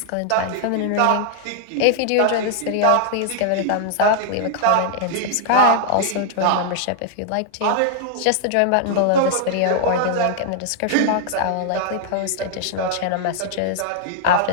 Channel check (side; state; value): both; different; correlation -0.01